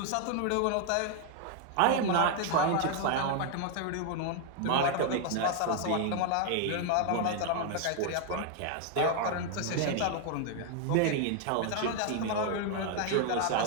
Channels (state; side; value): different; both; correlation 0.01